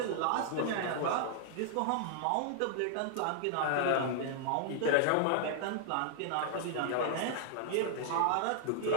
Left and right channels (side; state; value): both; different; correlation -0.01